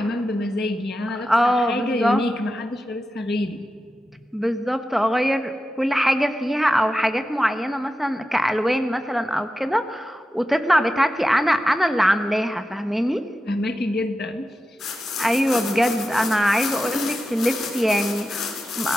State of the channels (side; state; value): both; normal; correlation 0.91